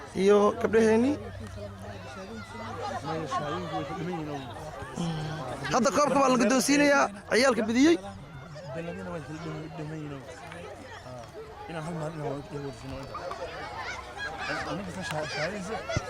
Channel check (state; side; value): identical; both; correlation 1.00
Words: iyo gabdhaheennii hadda koobka baa la guddoonsiinayaa ciyaalka bidiyey ina hal maalin oo ay warfino aniga ka shaqeeyay